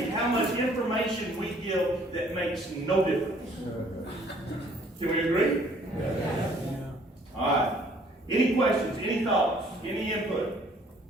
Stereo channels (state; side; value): normal; both; correlation 0.59